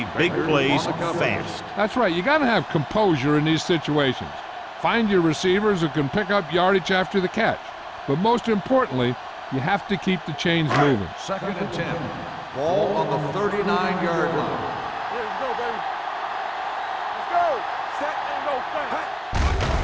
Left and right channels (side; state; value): both; identical; correlation 1.00